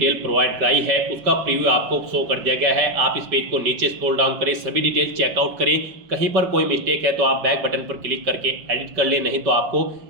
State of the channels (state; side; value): late; left; 5.2 ms